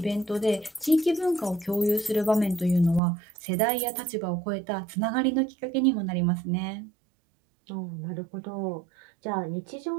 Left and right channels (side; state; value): left; drops out; at 3.0 s